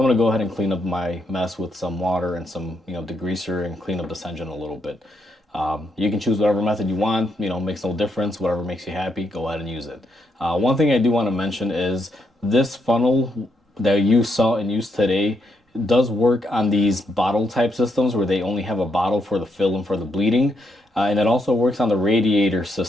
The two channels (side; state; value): both; normal; correlation 0.78